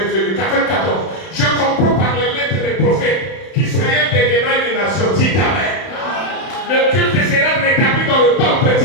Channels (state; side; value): late; right; 31 ms